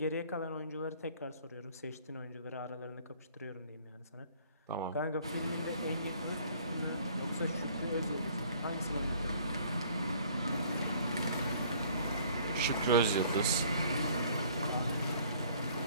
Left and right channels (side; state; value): both; inverted; correlation -0.56